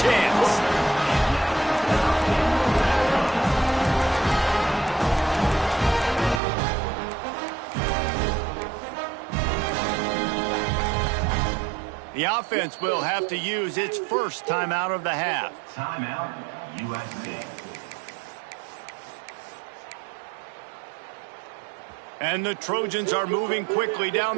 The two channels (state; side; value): drops out; left; at 6.4 s